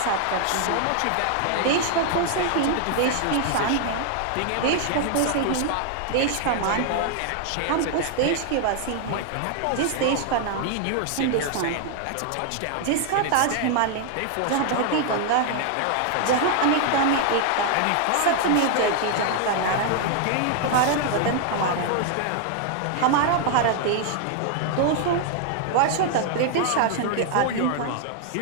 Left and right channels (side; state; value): both; different; correlation 0.00